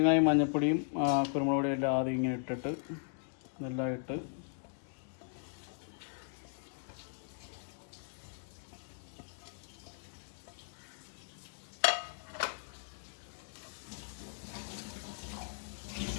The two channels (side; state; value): right; silent; digital silence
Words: മഞ്ഞൾപ്പൊടിയും കുരുമുളക് പൊടിയും എല്ലാം ആദ്യം ഇങ്ങനെ ഇട്ടിട്ട് ഇതെല്ലാം ഇട്ട്